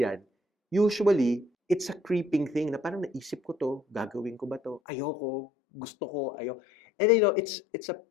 yan, usually, it's a creeping thing na parang naisip ko to, gagawin ko ba to? Ayoko, gusto ko, ayoko. And it's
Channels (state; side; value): drops out; right; at 4.8 s